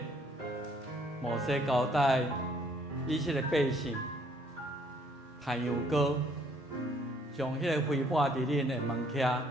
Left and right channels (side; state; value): both; normal; correlation 0.64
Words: 摩西交代以色列百姓弹羊羔，将迄个灰抹伫恁的门屉、